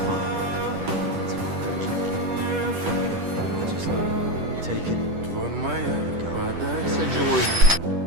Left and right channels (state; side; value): late; left; 10 ms